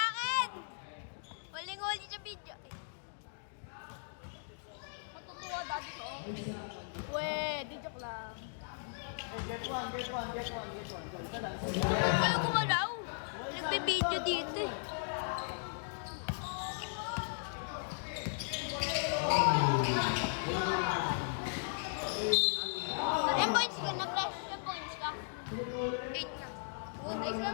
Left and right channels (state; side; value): silent; right; digital silence